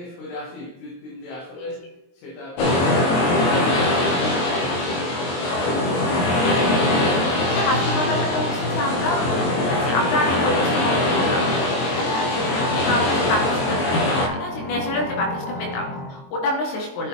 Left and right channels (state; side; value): late; right; 23 ms